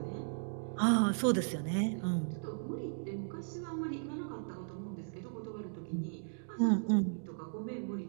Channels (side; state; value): left; silent; digital silence